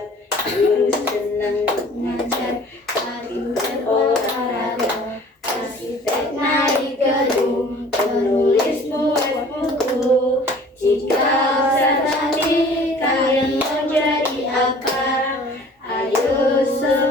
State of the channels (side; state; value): both; normal; correlation 0.49